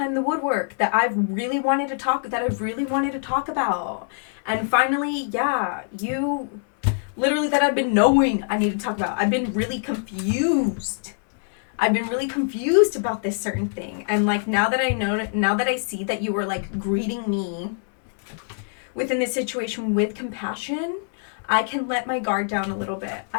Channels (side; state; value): right; silent; 63 dB below the other